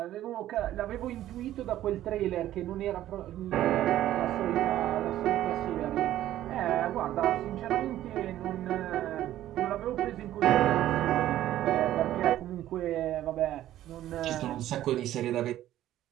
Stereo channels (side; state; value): left; quieter; 13.2 dB